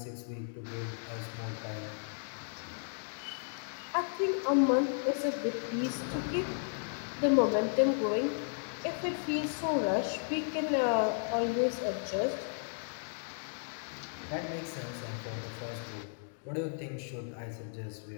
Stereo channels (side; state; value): right; silent; digital silence